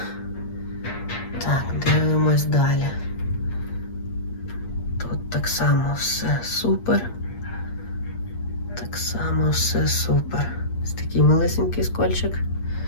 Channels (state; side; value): late; right; 8.5 ms